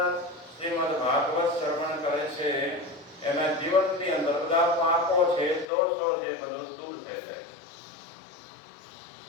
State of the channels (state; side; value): drops out; right; at 5.7 s